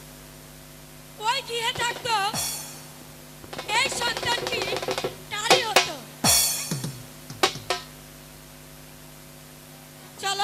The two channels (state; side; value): identical; both; correlation 1.00